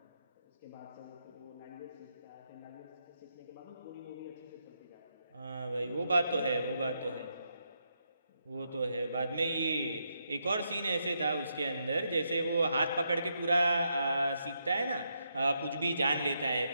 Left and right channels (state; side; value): inverted; both; correlation -0.81